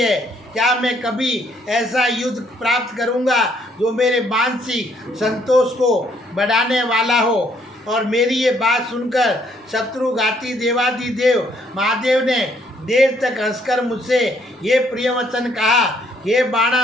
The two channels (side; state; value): both; normal; correlation 0.67